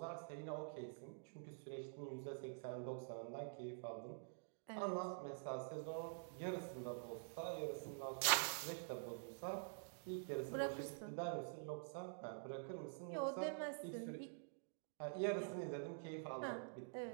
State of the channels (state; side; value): silent; left; digital silence